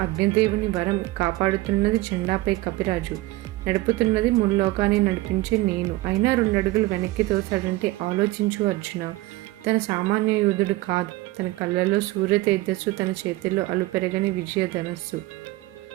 అగ్నిదేవుని వరం కాపాడుతున్నది జెండాపై కపిరాజు, నడుపుతున్నది ముల్లోకాన్ని నడిపించే నేను, అయినా 2 అడుగులు వెనక్కి తోసాడంటే ఆలోచించు అర్జున. తన సామాన్య యోధుడు కాదు, తన కళ్ళలో సూర్య తేజస్సు, తన చేతిలో అలుపెరగని విజయధనస్సు,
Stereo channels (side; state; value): left; quieter; 18.6 dB